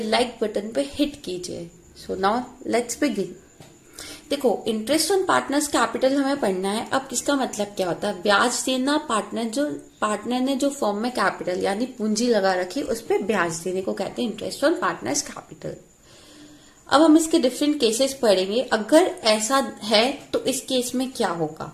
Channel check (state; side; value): identical; both; correlation 1.00